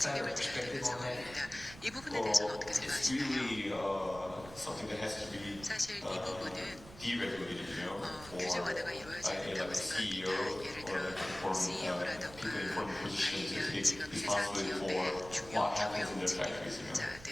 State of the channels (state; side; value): noise; right; rumble, 17 dB below the sound